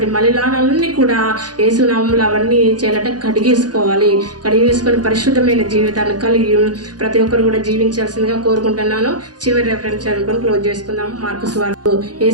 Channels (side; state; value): left; late; 0.69 ms